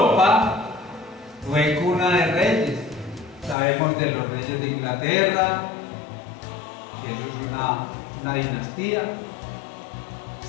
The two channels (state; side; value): drops out; right; at 3.6 s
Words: fue cuna de reyes. Sabemos de los reyes de Inglaterra, que eso es una dinastía.